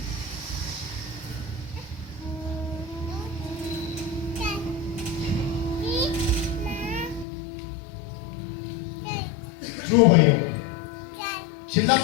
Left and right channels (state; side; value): drops out; right; at 7.2 s